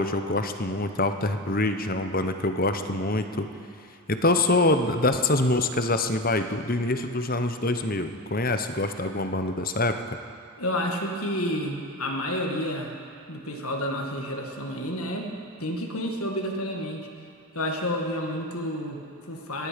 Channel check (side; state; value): both; normal; correlation 0.23